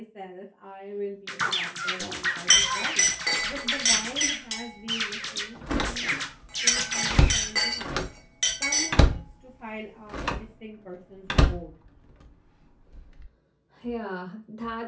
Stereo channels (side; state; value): both; identical; correlation 1.00